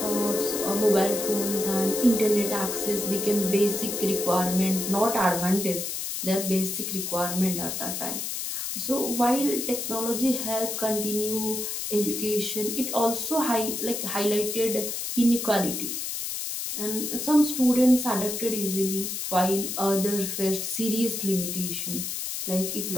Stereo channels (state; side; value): noise; left; hiss, 4 dB below the sound